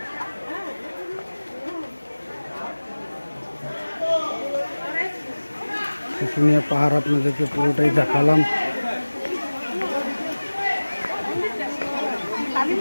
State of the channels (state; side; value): inverted; both; correlation -1.00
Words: শুশুনিয়া পাহাড় আপনাদেরকে পুরোটাই দেখালাম।